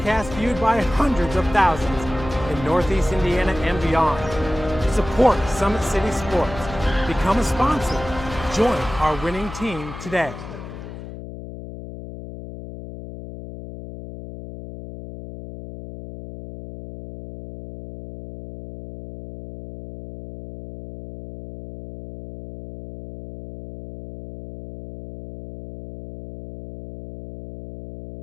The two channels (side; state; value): left; noise; hum, 12 dB below the sound